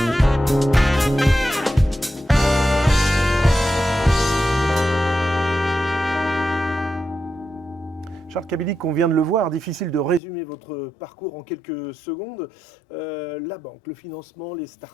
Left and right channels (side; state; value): right; drops out; at 10.2 s